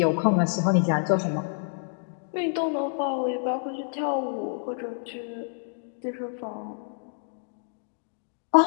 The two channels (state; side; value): silent; right; digital silence